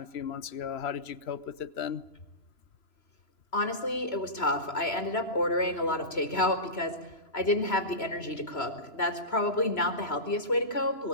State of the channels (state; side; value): late; right; 3.0 ms